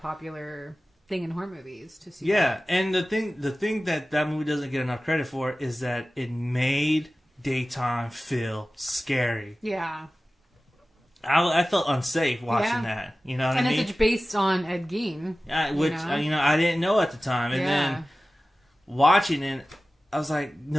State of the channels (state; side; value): normal; both; correlation 0.96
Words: thing in horror movies to see. Yeah, that. And the thing that movie doesn't get enough credit for is that it made daytime feel scary. Yeah. I felt unsafe watching that. You know what I mean? And it's based on Ed Gein. Which, I didn't know at the time. And then watching it, I was like,